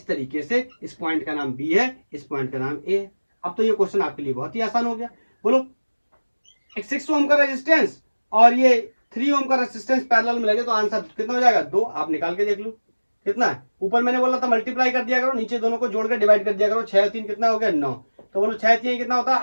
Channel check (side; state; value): both; inverted; correlation -1.00